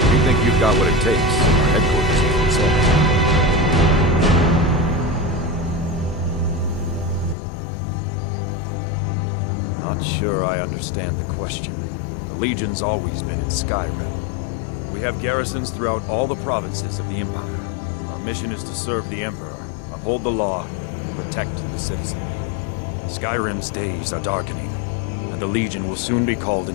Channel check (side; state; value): right; drops out; at 7.4 s